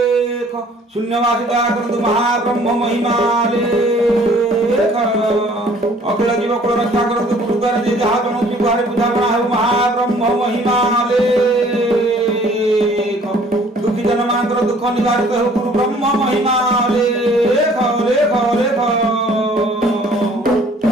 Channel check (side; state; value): both; normal; correlation 0.56